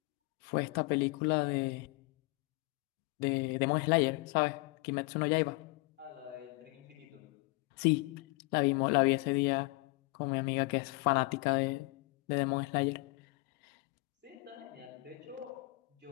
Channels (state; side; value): quieter; right; 25.6 dB